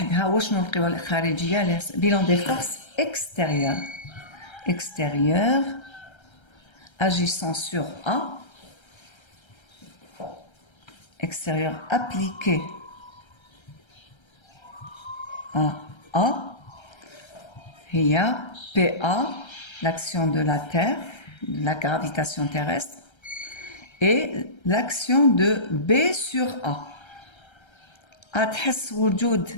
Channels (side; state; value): right; late; 1.3 ms